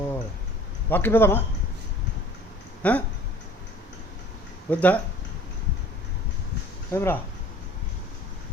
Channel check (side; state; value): both; normal; correlation 0.49